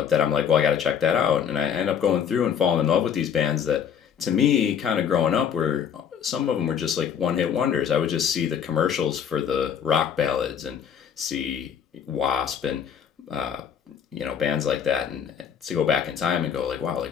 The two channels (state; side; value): quieter; right; 8.0 dB